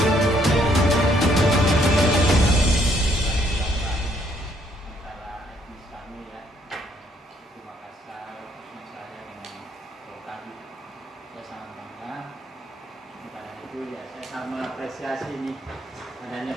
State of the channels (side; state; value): both; normal; correlation 0.68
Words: Ya, saya sangat mengapresiasi nih adanya